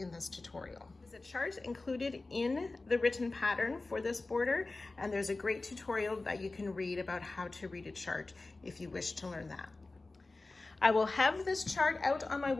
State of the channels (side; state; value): right; quieter; 3.3 dB